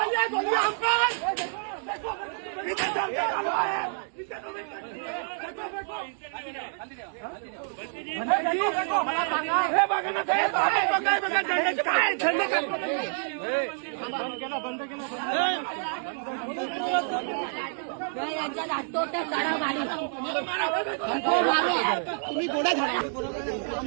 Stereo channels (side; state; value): left; silent; digital silence